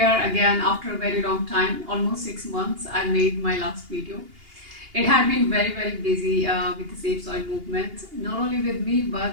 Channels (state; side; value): late; left; 2.8 ms